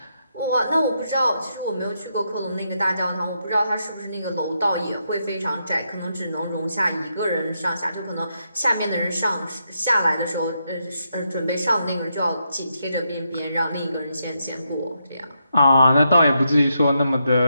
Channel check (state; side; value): inverted; both; correlation -0.81